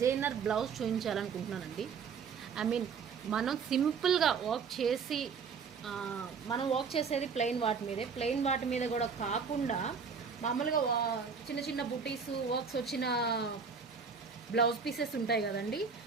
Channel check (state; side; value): quieter; left; 5.8 dB